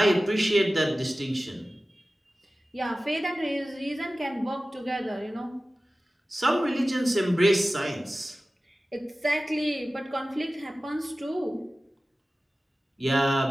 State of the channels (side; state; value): both; normal; correlation 0.96